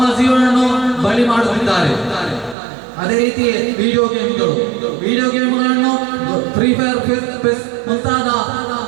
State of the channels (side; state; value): left; drops out; at 2.6 s